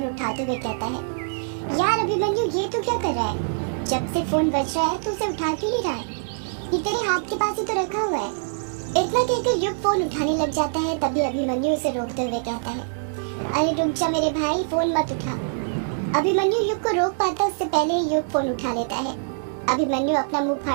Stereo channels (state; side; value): silent; left; digital silence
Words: उठाते हुए कहता है, यार अभिमन्यु ये तो क्या कर रहा है? जब से फोन बज रहा है तो उसे उठा क्यों नहीं रहा है? ये तेरे हाथ के पास ही तो रखा हुआ है। इतना कहकर युग फोन उठाने लग जाता है। तभी अभिमन्यु उसे रोकते हुए कहता है, अरे रुक जा मेरे भाई, फोन मत उठा। अभिमन्यु युग को रोक पाता उससे पहले ही युग फोन उठा लेता है। अभिमन्यु अपना मुंह